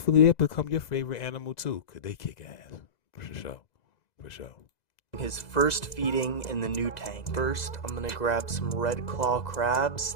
it'll become your favorite animal, too, because they kick ass. For sure. For sure. His first feeding in the new tank. First, I'm gonna grab some red claw crabs.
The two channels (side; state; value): right; late; 2.0 ms